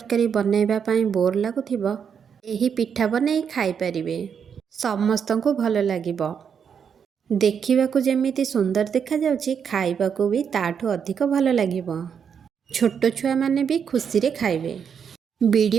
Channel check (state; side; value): quieter; left; 7.2 dB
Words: बनैबा पई बोर लागुथिबो एही पिठा बनै खाई परिबे। समस्तंको भल लागिबो। देखिबा को जेमिति सुंदर देखा जाउछि, खाइबा को भी ताठू अधिक भल लागिबो। छोट छुआ माने भी खुशी रे खाइबे।